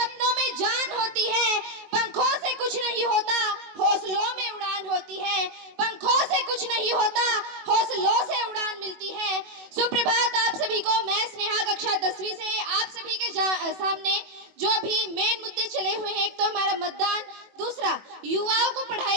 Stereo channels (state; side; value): late; left; 21 ms